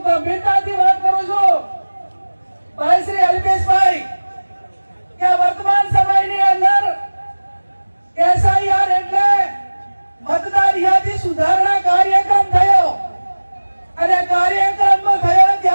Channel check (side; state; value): both; inverted; correlation -1.00